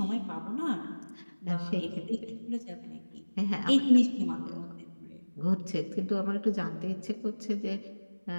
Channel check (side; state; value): both; inverted; correlation -1.00